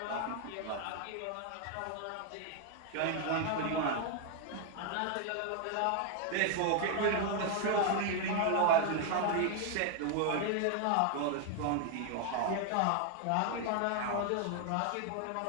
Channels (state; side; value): different; both; correlation 0.00